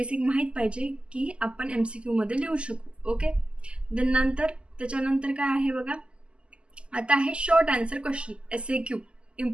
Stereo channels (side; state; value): left; late; 0.052 ms